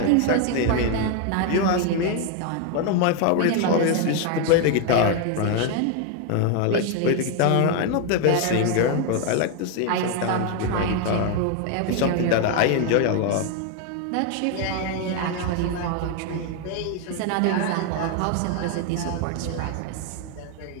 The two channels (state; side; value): different; both; correlation 0.01